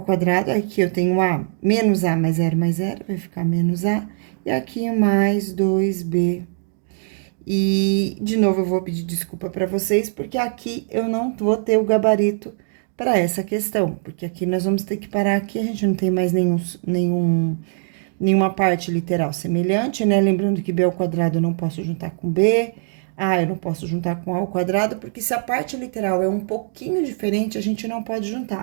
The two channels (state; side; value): silent; left; digital silence